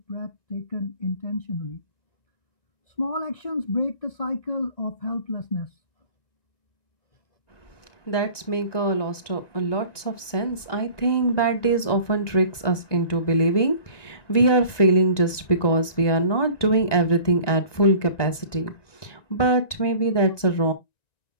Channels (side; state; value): right; late; 1.9 ms